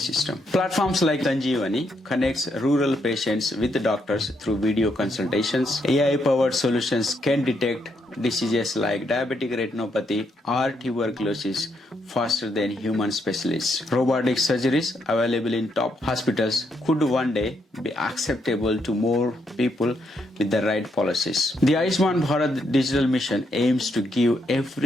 Platforms like Sanjeevani connects rural patients with the doctors through video consultations. AI-powered solutions can detect diseases like diabetic retinopathy or tuberculosis faster than human specialists. Robotic surgeries available in top hospitals could one day be acceptable to more people with the right policies. The Ayushman Bharat digital mission aims to give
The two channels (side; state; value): both; normal; correlation 0.77